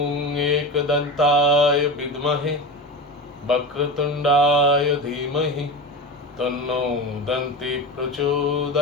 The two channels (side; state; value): both; normal; correlation 0.25